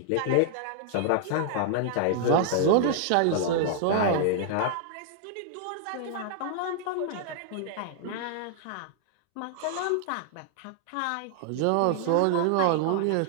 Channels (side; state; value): both; different; correlation 0.00